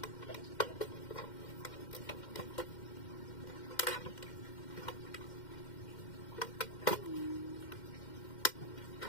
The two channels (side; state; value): right; late; 2.1 ms